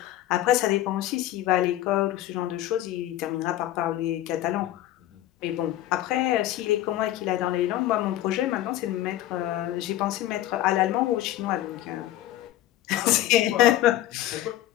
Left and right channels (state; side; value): quieter; right; 14.1 dB